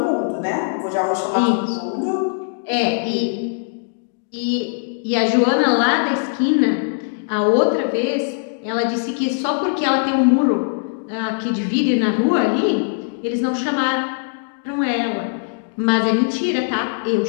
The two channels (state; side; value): silent; right; digital silence